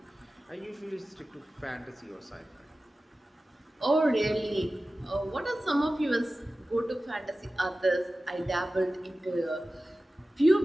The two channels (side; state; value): both; normal; correlation 0.95